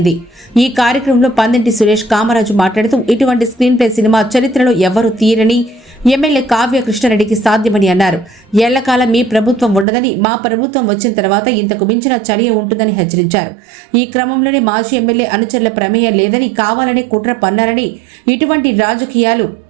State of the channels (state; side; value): drops out; left; at 9.9 s